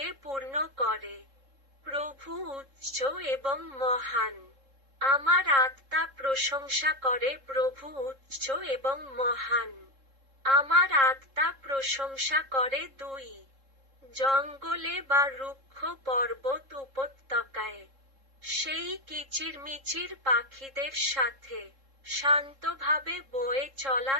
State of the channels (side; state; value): left; late; 3.7 ms